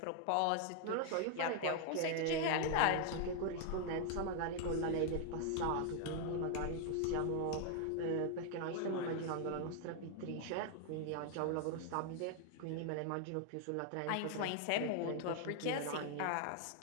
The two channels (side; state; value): both; different; correlation 0.00